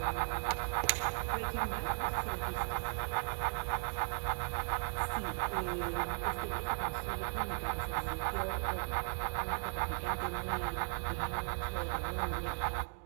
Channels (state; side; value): silent; left; digital silence